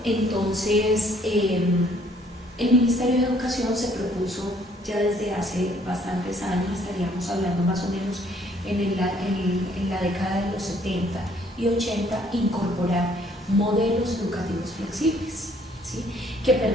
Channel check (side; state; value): both; normal; correlation 0.63